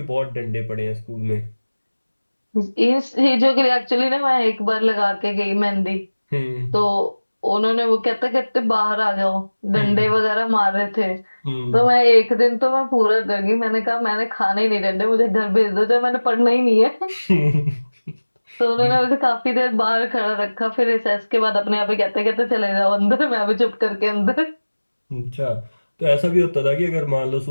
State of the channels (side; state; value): both; inverted; correlation -1.00